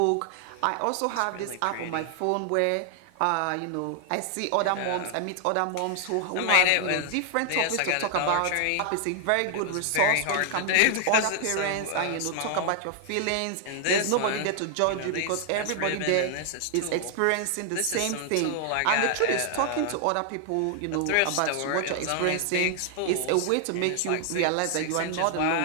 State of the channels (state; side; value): different; both; correlation 0.00